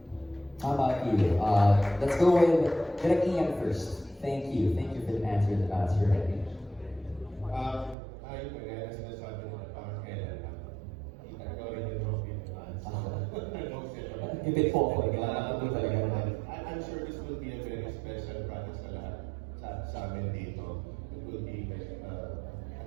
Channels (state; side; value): drops out; left; at 8.0 s